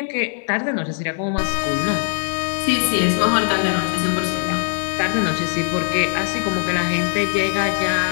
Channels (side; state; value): right; silent; digital silence